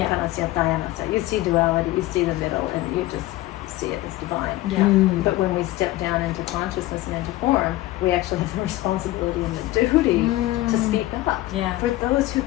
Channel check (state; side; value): quieter; right; 17.0 dB